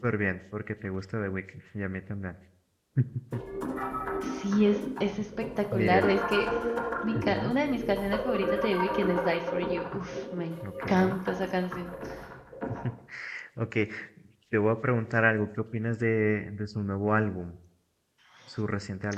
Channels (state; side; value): identical; both; correlation 1.00